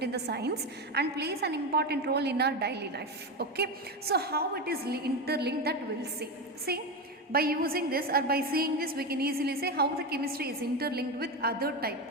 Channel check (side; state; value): both; normal; correlation 0.16